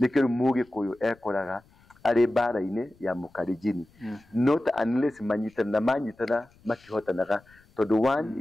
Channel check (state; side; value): noise; left; rumble, 30 dB below the sound